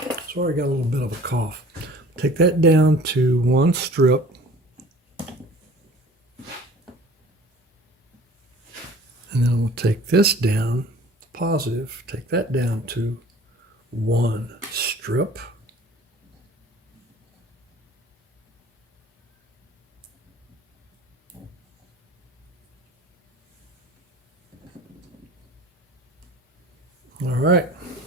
sorry, I got a little bit of a cough. Take that down to 1 strip. And then I'm going to take this down, positive, take that down to 1 strip. All right,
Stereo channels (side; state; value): both; normal; correlation 0.47